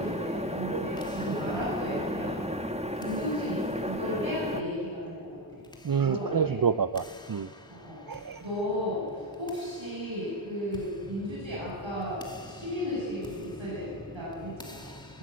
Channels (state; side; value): normal; both; correlation 0.08